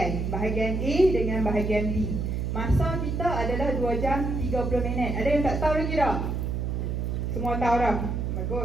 bahagian A dengan bahagian B. Masa kita adalah 2 jam 30 minit. Ada yang tak tahu lagi tak? Semua tahu dah?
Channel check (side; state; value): right; noise; hum, 1 dB below the sound